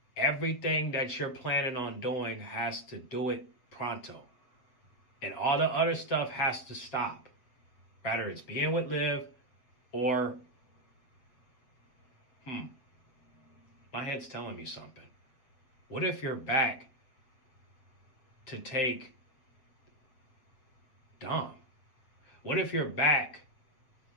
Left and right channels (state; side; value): late; right; 7.6 ms